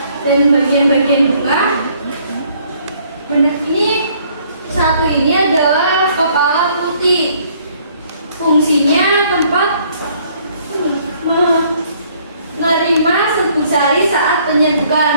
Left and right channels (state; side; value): inverted; both; correlation -0.63